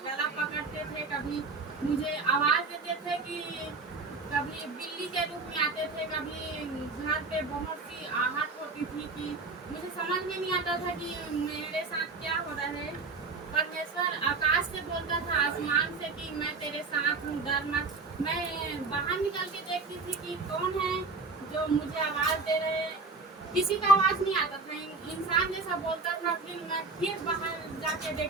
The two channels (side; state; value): left; quieter; 4.0 dB